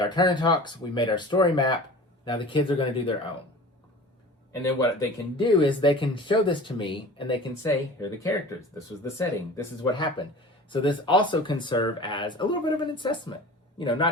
turn and talks, we made our story map. Now the kids are going to do their own. And then what they can do is they can show this to me and they can say, here are the characters. This was the setting. This is what happened. So this also can serve as a little bit of an assessment. You know,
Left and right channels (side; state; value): both; normal; correlation 0.39